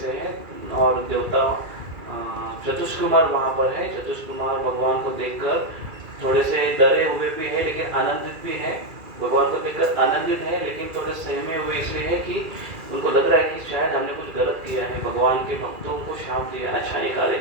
है, और देवता चतुष कुमार वहाँ पर है। चतुष कुमार भगवान को देखकर थोड़े से डरे हुए भी है, लेकिन आनंदित भी है। भगवान को देखकर आनंदित है, लेकिन थोड़े सहमे हुए इसलिए है कि उनको लग रहा है कि शायद हमने कुछ गलत किया है, भगवान के भक्तों को शाप दिया, अच्छा निकाले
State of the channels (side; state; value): left; late; 2.4 ms